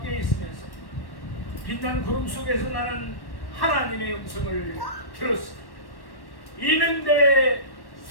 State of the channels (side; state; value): right; late; 1.1 ms